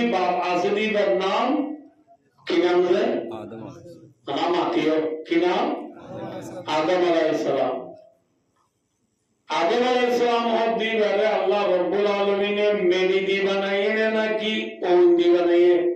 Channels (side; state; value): both; identical; correlation 1.00